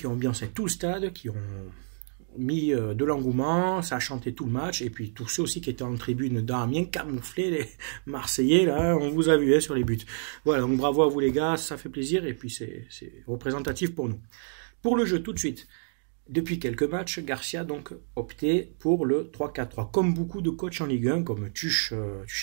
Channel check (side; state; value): left; silent; digital silence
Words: ont ambiancé tout le stade, qui ont mis de l'engouement, ça a chanté tout le match, et puis tous ceux aussi qui étaient en tribune d'Amiens, camouflés, les Marseillais, là, on vous a vu sur les buts. Voilà, donc bravo à vous les gars, ça fait plaisir, et puis c'est représentatif pour nous. Pour le jeu, tout de suite, depuis quelques matchs, Garcia donc opté pour le 3-4-3, comme beaucoup de coachs en Ligue 1, comme